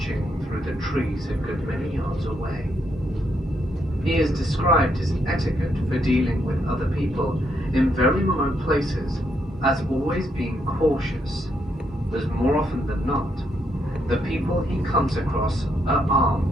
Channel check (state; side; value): normal; both; correlation 0.76